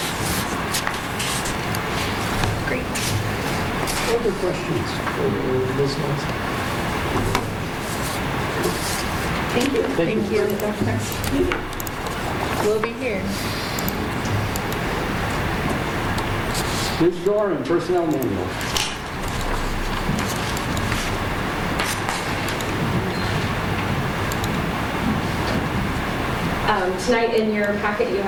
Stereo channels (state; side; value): identical; both; correlation 1.00